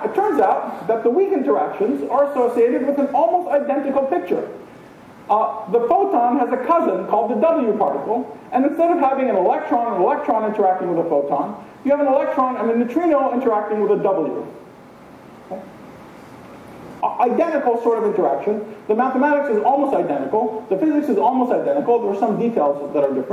it turns out that the weak interactions are associated with an almost identical picture. The photon has a cousin called the W particle, and instead of having an electron interacting with a photon, you have a neutrino interacting with a W. Okay? Identical sort of interaction. The mathematics is almost identical. The physics is almost identical. There are some details that are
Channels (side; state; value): both; identical; correlation 1.00